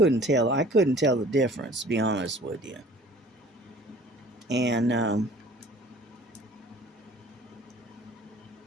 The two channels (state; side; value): normal; both; correlation 0.50